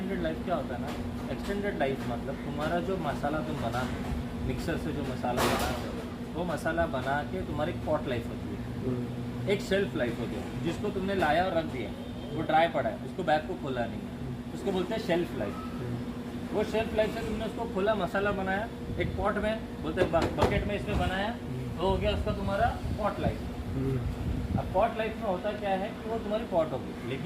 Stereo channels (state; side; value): identical; both; correlation 1.00